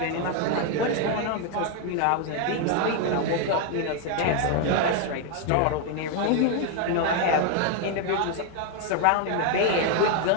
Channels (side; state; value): both; different; correlation 0.01